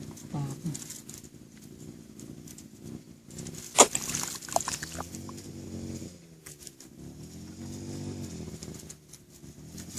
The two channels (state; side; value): identical; both; correlation 1.00